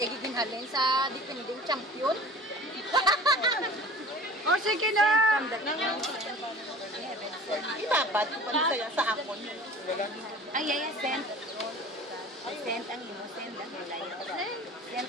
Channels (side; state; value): both; normal; correlation 0.42